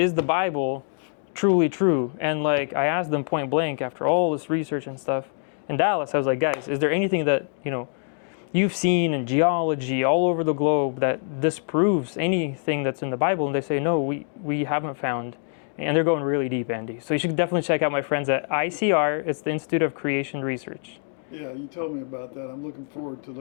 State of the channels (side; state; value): right; silent; 57 dB below the other